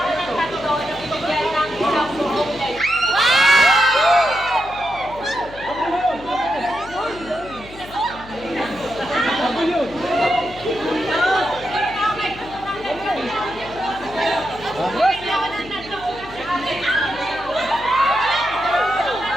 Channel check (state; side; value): noise; left; hum, 18 dB below the sound